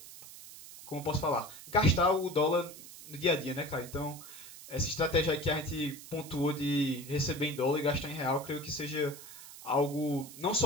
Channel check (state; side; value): noise; right; hiss, 15 dB below the sound